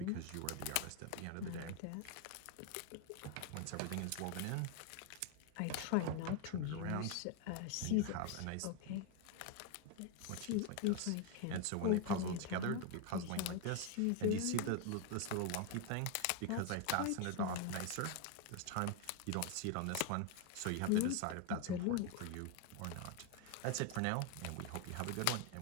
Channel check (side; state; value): both; different; correlation 0.01